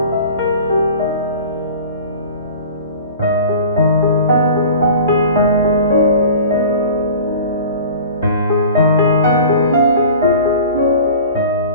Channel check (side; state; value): both; inverted; correlation -0.40